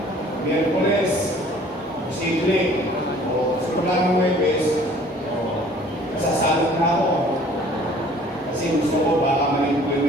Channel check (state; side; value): normal; both; correlation 0.53